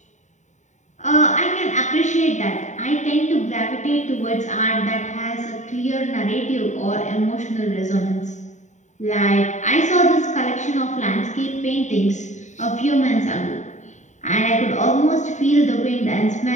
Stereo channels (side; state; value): right; late; 0.34 ms